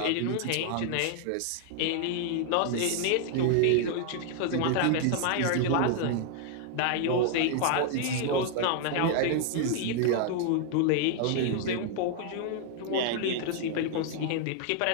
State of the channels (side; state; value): both; different; correlation 0.00